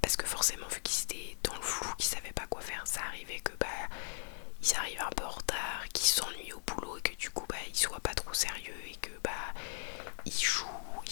parce que forcément vu qu'ils étaient dans le flou, qu'ils savaient pas quoi faire, ça arrivait que ils arrivent un peu en retard, qu'ils s'ennuient au boulot, et que du coup ils soient pas trop sérieux, et que ils jouent, ils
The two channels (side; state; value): right; silent; 52 dB below the other